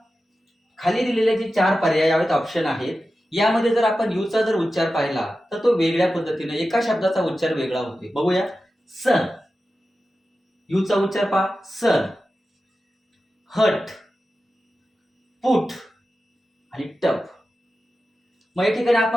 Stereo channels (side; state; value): both; normal; correlation 0.93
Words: खाली दिलेले जे 4 पर्यायात ऑप्शन आहेत यामध्ये जर आपण यूचा जर उच्चार पाहिला तर तो वेगळ्या पद्धतीने एका शब्दाचा उच्चार वेगळा होतोय. बघूया. सन, यूचा उच्चार पहा, सन. हट, पुट आणि टप. मग या ठिकाणी